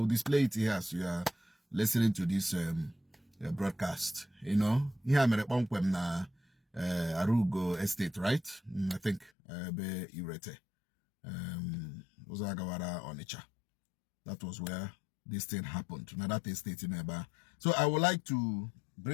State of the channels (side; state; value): right; drops out; at 9.3 s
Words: display it here as you are listening to this broadcast. You know, here I'm at one na Arugo estate, right? I think be Irete. Uzagawara Onitsha. That was where this thing happened. Now that estate in Eba. So I would like to